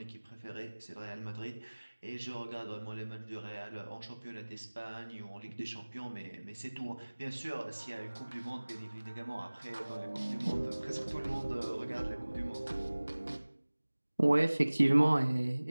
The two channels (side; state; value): both; inverted; correlation -1.00